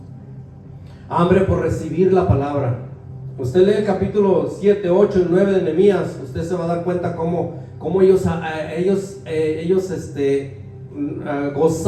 hambre por recibir la palabra. Usted lee el capítulo 7, 8 y 9 de Nehemías, usted se va a dar cuenta cómo ellos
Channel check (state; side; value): identical; both; correlation 1.00